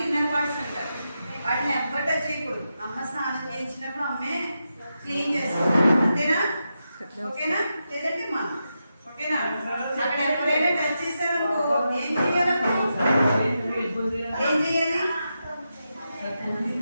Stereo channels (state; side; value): inverted; both; correlation -0.87